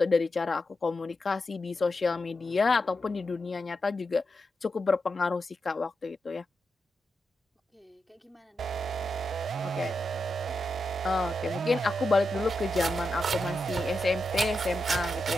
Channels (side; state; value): both; normal; correlation 0.87